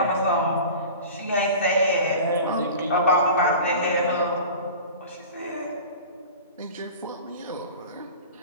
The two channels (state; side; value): inverted; both; correlation -0.37